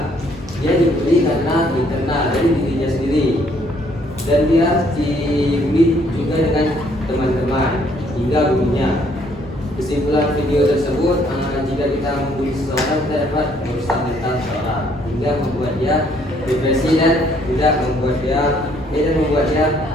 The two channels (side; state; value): both; normal; correlation 0.66